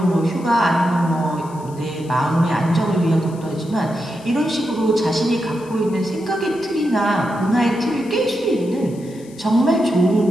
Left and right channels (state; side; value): noise; left; hiss, 24 dB below the sound